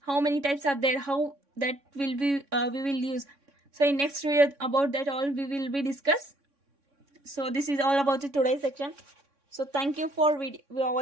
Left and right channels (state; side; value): late; left; 3.6 ms